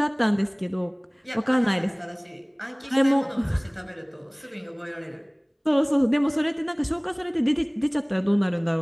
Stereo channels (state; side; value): identical; both; correlation 1.00